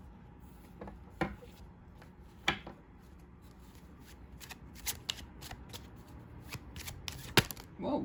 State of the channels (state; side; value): identical; both; correlation 1.00